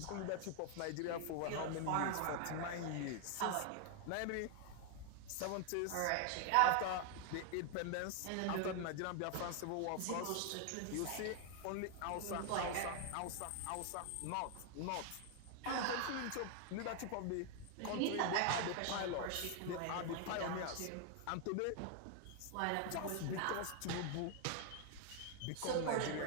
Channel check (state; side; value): different; both; correlation 0.00